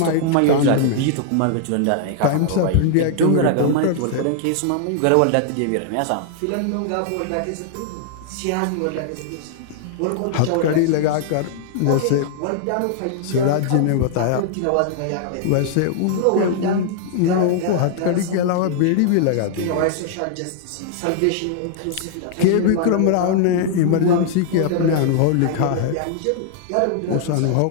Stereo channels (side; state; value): both; different; correlation -0.01